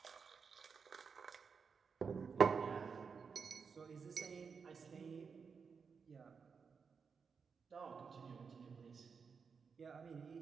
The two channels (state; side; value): quieter; left; 5.7 dB